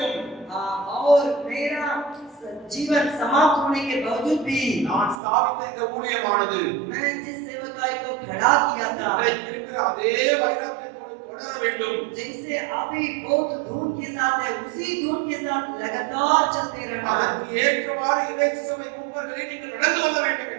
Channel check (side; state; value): left; drops out; at 5.2 s